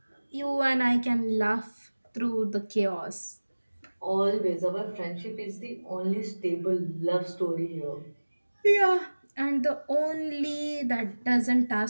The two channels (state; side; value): inverted; both; correlation -1.00